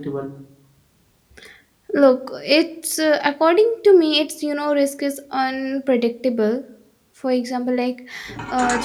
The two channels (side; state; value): both; identical; correlation 1.00